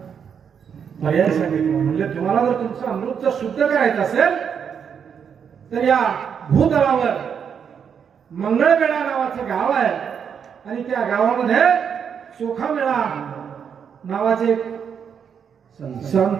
पर्याय सांगितलं. म्हणजे तुम्हाला जर तुमचं अमृत शुद्ध करायचं असेल तर या भूतलावर मंगळवेढा नावाचं गाव आहे आणि त्या गावामध्ये चोखामेळा नावाचे एक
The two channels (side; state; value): left; quieter; 7.4 dB